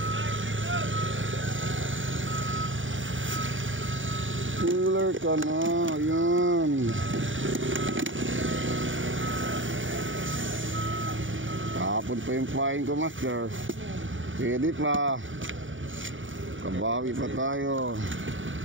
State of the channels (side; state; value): left; late; 0.57 ms